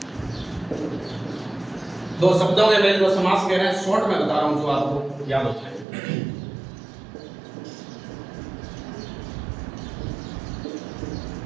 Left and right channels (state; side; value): drops out; left; at 5.9 s